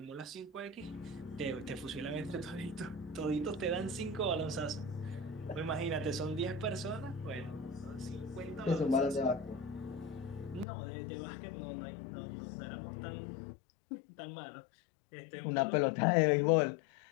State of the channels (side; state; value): right; drops out; at 10.7 s